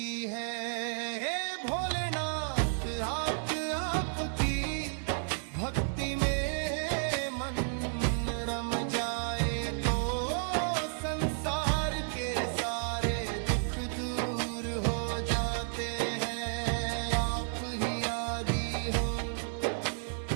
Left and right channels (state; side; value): silent; left; digital silence